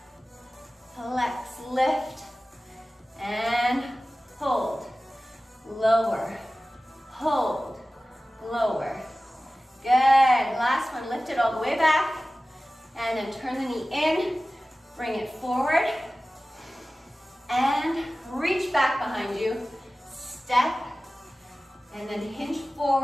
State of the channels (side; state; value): both; normal; correlation 0.96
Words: Flex, lift, and hold, lower, hold, lower. Good, last one, lift it all the way back, and then turn the knee in, bring it forward, and reach back behind you, step, and then hinge